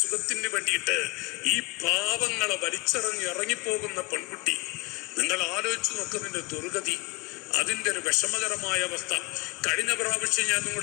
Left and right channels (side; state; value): right; quieter; 25.2 dB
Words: സുഖത്തിന് വേണ്ടിയിട്ട് ഈ പാവങ്ങളെ ഇറങ്ങിപ്പോകുന്ന പെൺകുട്ടി. നിങ്ങൾ ആലോചിച്ച് നോക്കുന്നതിന്റെ ദുർഗതി, അതിൻ്റെ ഒരു വിഷമകരമായ അവസ്ഥ. കഴിഞ്ഞ പ്രാവശ്യം ഞാൻ